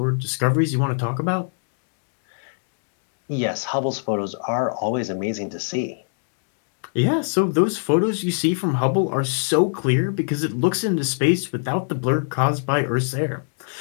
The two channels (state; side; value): silent; right; digital silence